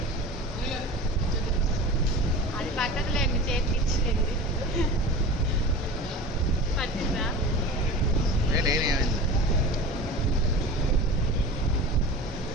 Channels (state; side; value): normal; both; correlation 0.34